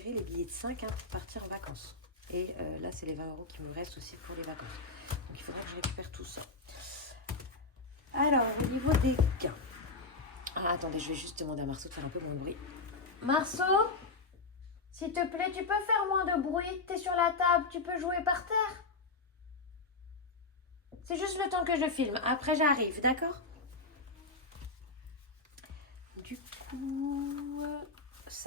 les billets de 5 pour partir en vacances. Et là, c'est les 20 € qui me restent aussi pour les vacances. Donc, il faudra que je récupère tout ça. Alors, au niveau des gains. Ah, attendez, je vais juste demander à Marceau de faire un peu moins de bruit. Marceau, s'il te plaît, tu peux faire moins de bruit. T'es sur la table, tu peux jouer par terre. C'est juste le temps que je filme. Après, j'arrive, d'accord? Du coup,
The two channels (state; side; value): quieter; right; 3.7 dB